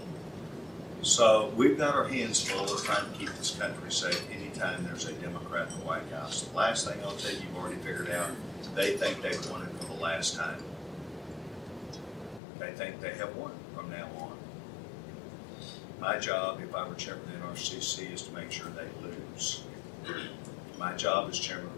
So we've got our hands full of trying to keep this country safe anytime there's a Democrat in the White House. The last thing I'll tell you, you've already figured out, they think they've won it for the last time. They think they have won from now on. My job, if I were chairman of the NRCC, is to make sure they lose. My job as chairman of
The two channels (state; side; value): drops out; right; at 12.4 s